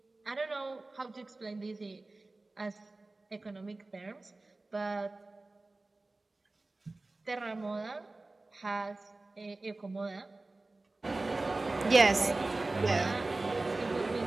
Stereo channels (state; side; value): quieter; left; 3.1 dB